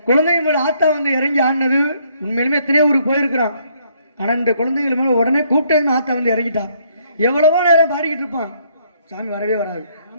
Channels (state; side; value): inverted; both; correlation -0.68